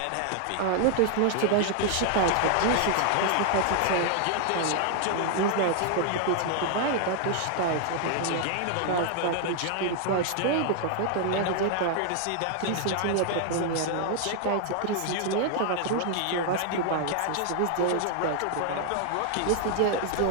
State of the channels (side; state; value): both; different; correlation 0.00